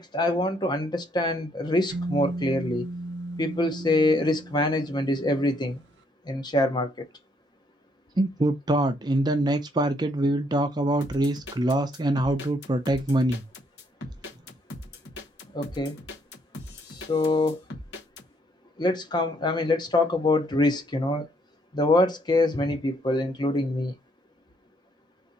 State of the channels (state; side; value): normal; both; correlation 0.70